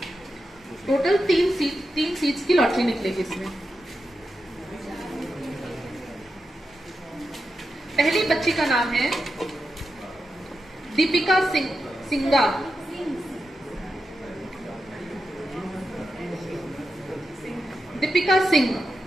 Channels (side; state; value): both; normal; correlation 0.88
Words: टोटल 3 सीट्स की लॉटरी निकलेगी इसमें। पहली बच्ची का नाम है दीपिका सिंगा। दीपिका सिंह।